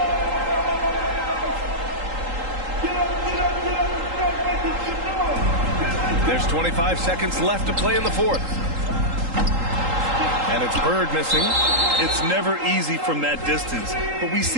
There's 25 seconds left to play in the fourth. And it's Bird missing. It's never easy from that distance, but we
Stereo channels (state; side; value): late; left; 3.8 ms